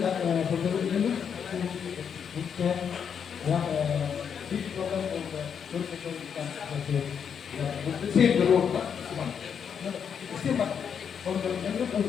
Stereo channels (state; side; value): quieter; right; 7.4 dB